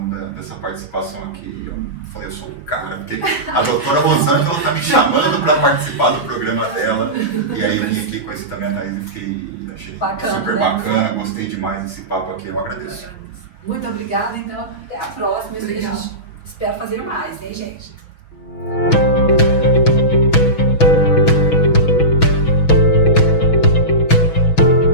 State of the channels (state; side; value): late; right; 6.5 ms